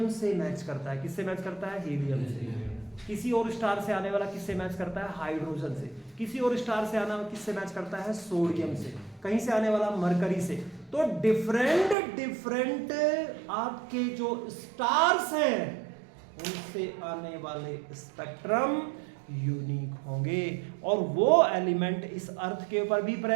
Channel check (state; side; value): drops out; left; at 12.0 s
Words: से मैच करता है। किससे मैच करता है? हीलियम से। किसी और स्टार से आने वाला किससे मैच करता है? हाइड्रोजन से। किसी और स्टार से आना किससे मैच करता है? सोडियम से। कहीं से आने वाला मरकरी से। तो डिफरेंट आपके जो स्टार्स हैं उनसे आने वाले स्पेक्ट्रम यूनिक होंगे, और वो एलिमेंट इस अर्थ के ऊपर भी